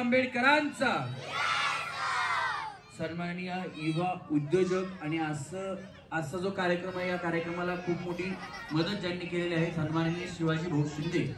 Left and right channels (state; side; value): identical; both; correlation 1.00